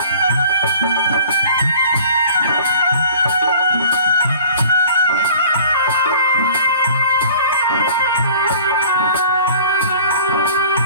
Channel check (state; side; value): inverted; both; correlation -0.48